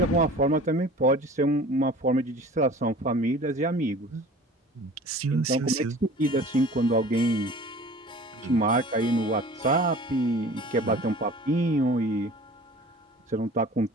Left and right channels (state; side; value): normal; both; correlation 0.43